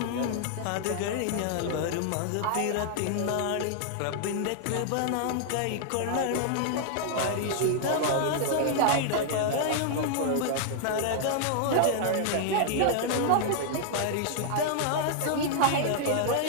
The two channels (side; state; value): both; different; correlation -0.01